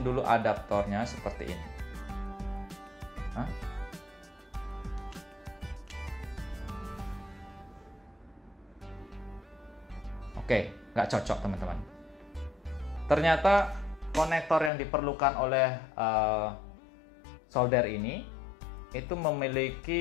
dulu adaptornya seperti ini. Oke, nggak cocok teman-teman. Ternyata konektor yang diperlukan oleh solder ini itu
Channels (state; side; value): drops out; right; at 14.7 s